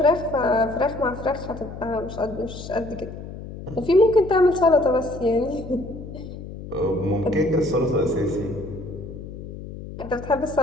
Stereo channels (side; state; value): left; noise; hum, 11 dB below the sound